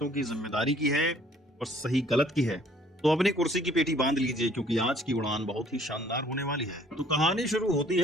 की जिम्मेदारी की है और सही गलत की है। तो अपनी कुर्सी की पेटी बांध लीजिए, क्योंकि आज की उड़ान बहुत ही शानदार होने वाली है। तो कहानी शुरू होती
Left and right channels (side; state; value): both; normal; correlation 0.58